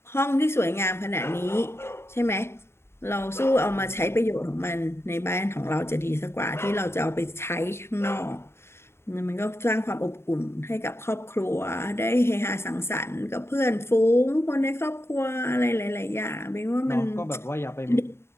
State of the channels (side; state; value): right; late; 0.12 ms